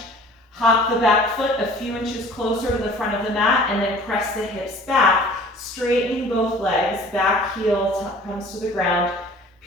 Hop the back foot a few inches closer to the front of the mat and then press the hips back, straightening both legs. Back heel comes to the ground,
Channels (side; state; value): both; normal; correlation 0.48